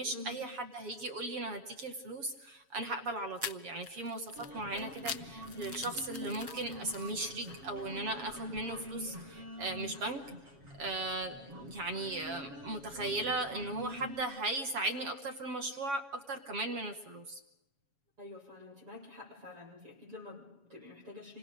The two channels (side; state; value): left; late; 7.2 ms